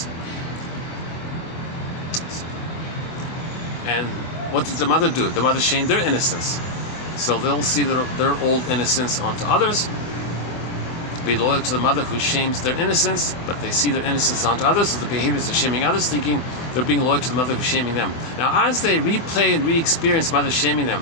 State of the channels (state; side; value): late; right; 24 ms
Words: And what did the mother do? The mother shamed their innocence. So they'll see their old innocence onto others, be loyal to the mother who shames their innocence, but they see their innocence onto others, so the behaviors of shaming others, thinking they're being loyal to the mother who's shaming them. Now, as they replay and re-experience mother shaming